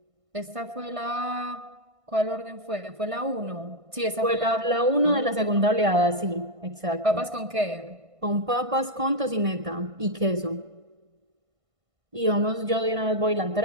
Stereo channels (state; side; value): late; left; 1.5 ms